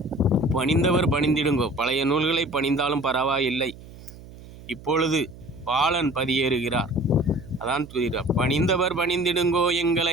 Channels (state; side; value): noise; right; hum, 18 dB below the sound